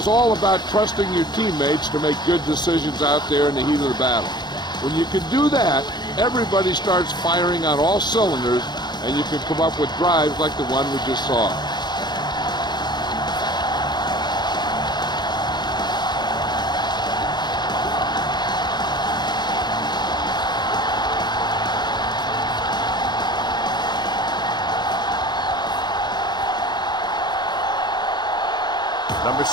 all about trusting your teammates to make good decisions out there in the heat of the battle. When you can do that, everybody starts firing on all cylinders, and you can come up with drives like the one we just saw. Number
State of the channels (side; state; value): right; late; 0.21 ms